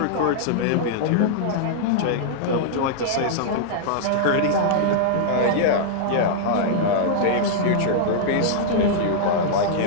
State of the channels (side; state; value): both; different; correlation -0.02